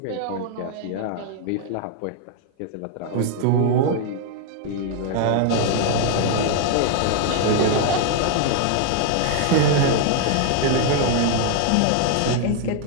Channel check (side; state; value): both; different; correlation 0.00